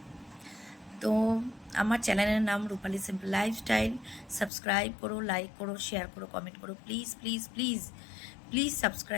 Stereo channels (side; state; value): right; drops out; at 4.5 s